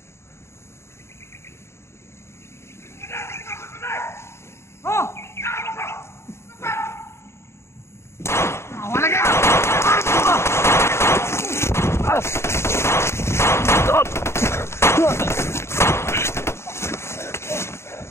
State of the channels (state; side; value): late; right; 0.13 ms